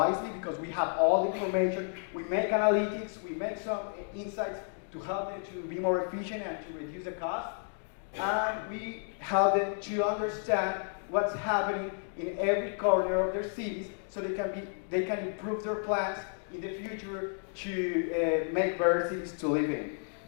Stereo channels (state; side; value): silent; right; 57 dB below the other